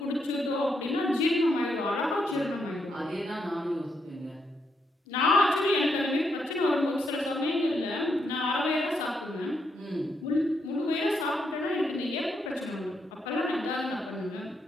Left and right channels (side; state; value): both; normal; correlation 0.79